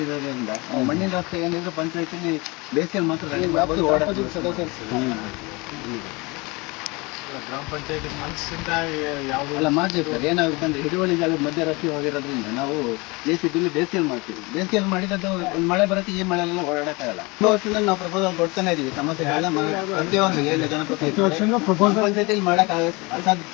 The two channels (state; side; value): quieter; right; 25.8 dB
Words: ಮಣ್ಣಿನ ರಸ್ತೆ ಏನಿದ್ರು ಪಂಚಾಯತಿಲಿ ಬೇಸಿಗೆಯಲ್ಲಿ ಮಾತ್ರ ಗ್ರಾಮ ಪಂಚಾಯತಿ ಮನಸ್ಸಿಂದ ಯಾವುದೆಲ್ಲ ಮಾಡ್ತೀವಿ ಸರ್. ಏನಾಗುತ್ತೆ ಅಂದರೆ ಹಿಡುವಳಿ ಜಾಗದ ಮಧ್ಯ ರಸ್ತೆ ಹೋಗಿರೋದ್ರಿಂದ ನಾವು ಬೇಸಿಗೆಯಲ್ಲಿ ಬೇಸಿಗೆಯಲ್ಲಿ ಮಾಡ್ತೀವಿ. ಬೇಸಿಗೆಯಲ್ಲಿ ಮಾಡಿದ್ದು ಒಂದು ಮಳೆ ಬರುತ್ತೆ, ಈ ಮಳೆಯೆಲ್ಲ ಓಡಾಡೋಕ್ಕಾಗಲ್ಲ. ವರ್ಷದಲ್ಲಿ ನಾವು ಪ್ರಪೋಸಲ್ ಕೊಡ್ತಾನೆ ಇದೀವಿ. ಸಮಸ್ಯೆಗಳೆಲ್ಲ ಪ್ರತಿಯೊಂದು ಏನು ಜನಪ್ರತಿನಿಧಿ ಪಂಚಾಯತಿಯಲ್ಲಿ ಮಾಡೋಕ್ಕಾಗ ಅಸಾಧ್ಯ.